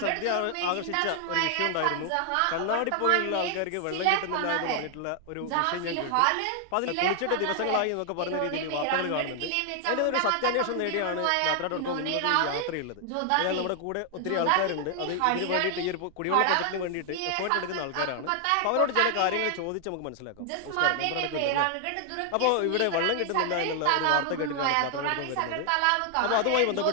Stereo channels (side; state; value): both; different; correlation 0.00